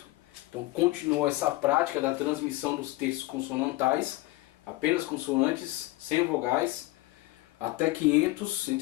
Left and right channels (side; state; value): right; quieter; 19.3 dB